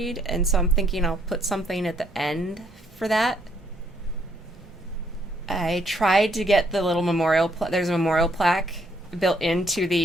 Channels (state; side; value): normal; both; correlation 0.70